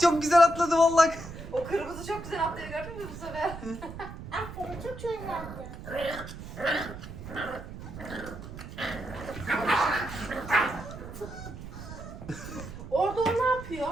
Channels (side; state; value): right; noise; rumble, 11 dB below the sound